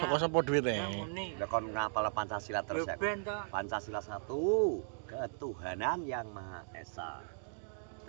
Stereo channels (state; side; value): silent; left; digital silence